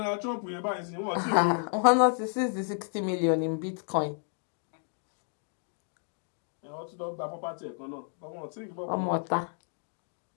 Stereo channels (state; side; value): silent; right; 56 dB below the other